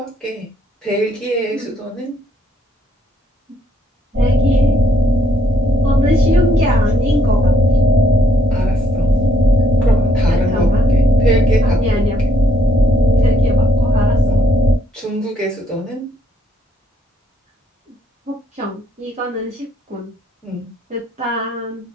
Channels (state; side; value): normal; both; correlation 0.71